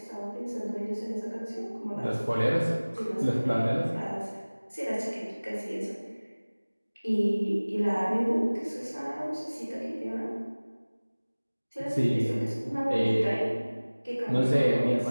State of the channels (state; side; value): inverted; both; correlation -1.00